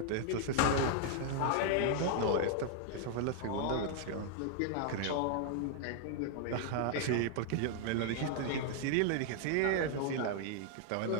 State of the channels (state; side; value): different; both; correlation 0.00